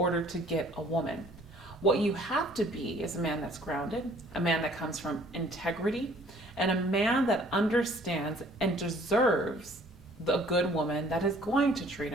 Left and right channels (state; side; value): normal; both; correlation 0.57